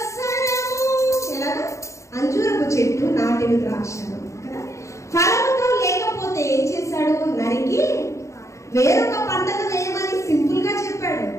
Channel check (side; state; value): right; late; 0.14 ms